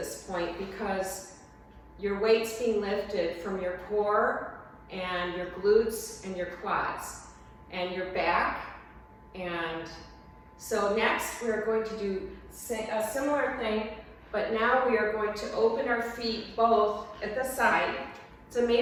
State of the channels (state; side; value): identical; both; correlation 1.00